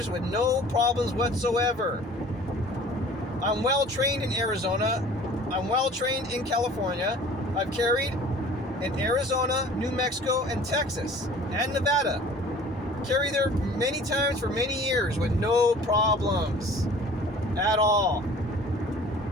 with no problems whatsoever. I'm well trained in Arizona. I'm well trained in California. I've carried in Arizona, New Mexico, and Texas, and Nevada. Carried there many times for many years with no problems at all.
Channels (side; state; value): both; normal; correlation 0.47